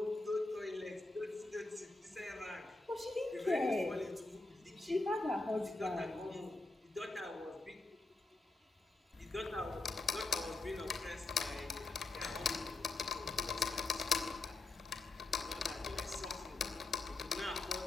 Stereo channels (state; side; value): quieter; right; 3.2 dB